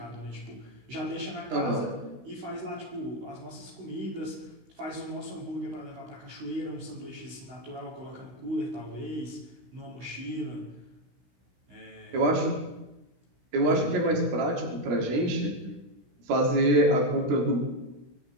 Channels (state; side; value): late; left; 16 ms